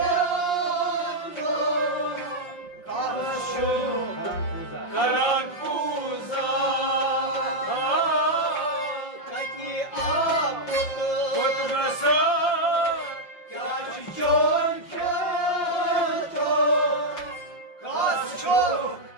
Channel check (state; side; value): late; right; 5.7 ms